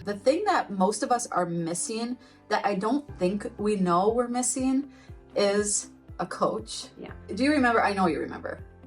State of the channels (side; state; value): both; identical; correlation 1.00